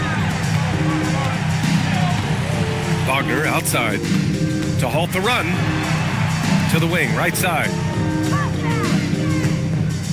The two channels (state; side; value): identical; both; correlation 1.00